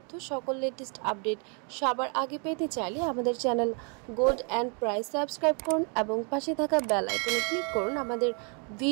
সকল লেটেস্ট আপডেট সবার আগে পেতে চাইলে আমাদের channel gold and price subscribe করুন এবং পাশে থাকা বেল আইকনে ক্লিক করুন আমাদের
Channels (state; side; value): quieter; left; 37.1 dB